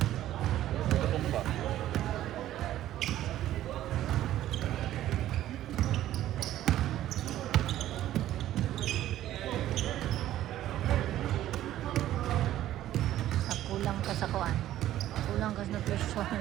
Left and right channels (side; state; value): left; quieter; 13.2 dB